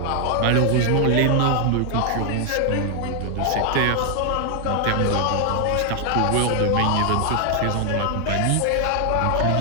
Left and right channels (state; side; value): different; both; correlation 0.00